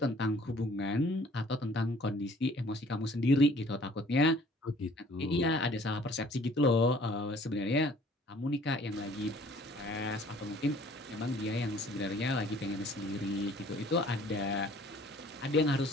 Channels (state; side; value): normal; both; correlation 0.55